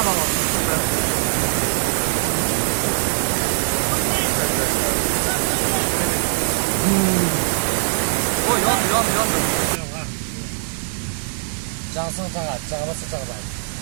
aslında. O yan. Cansın çağa, çağırsa çağırlar.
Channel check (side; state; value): left; silent; digital silence